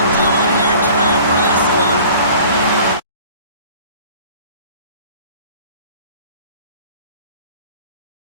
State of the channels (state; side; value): inverted; both; correlation -0.48